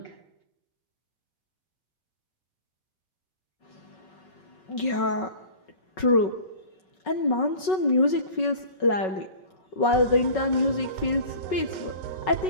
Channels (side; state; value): right; late; 5.4 ms